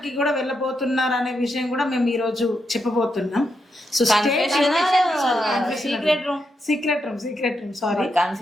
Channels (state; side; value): normal; both; correlation 0.83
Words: కి కూడా వెళ్ళబోతున్నారు అనే విషయం కూడా మేము ఈ రోజు చెప్పబోతున్నాం. So secret room sorry